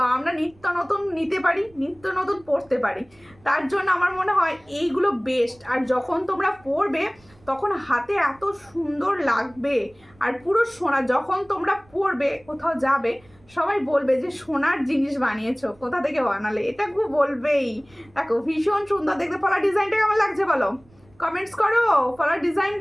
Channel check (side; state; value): right; noise; rumble, 29 dB below the sound